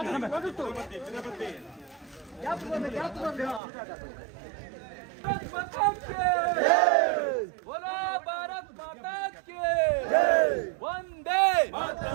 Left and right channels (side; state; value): left; drops out; at 3.6 s